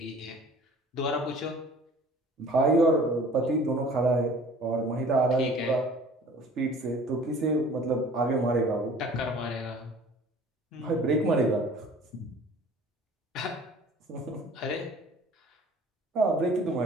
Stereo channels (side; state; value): both; normal; correlation 0.49